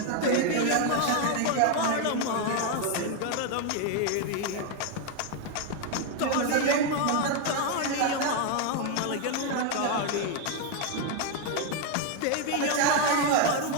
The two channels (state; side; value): different; both; correlation 0.01